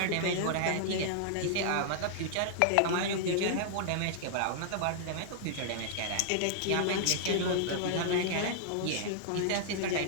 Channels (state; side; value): different; both; correlation -0.01